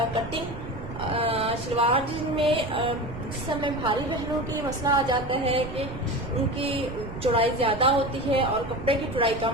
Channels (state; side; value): noise; right; rumble, 10 dB below the sound